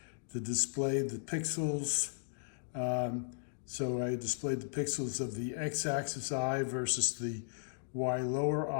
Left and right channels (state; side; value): silent; right; digital silence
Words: to display the pixels. So I displayed the pixels of the x-axis I versus the y lower